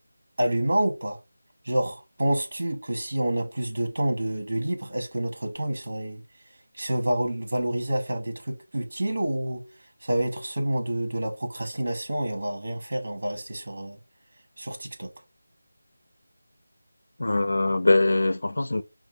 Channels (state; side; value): inverted; both; correlation -0.97